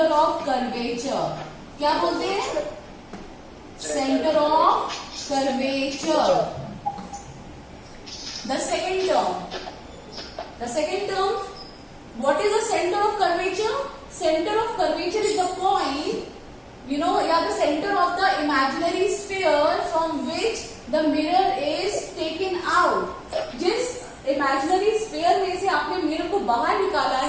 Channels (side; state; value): both; identical; correlation 1.00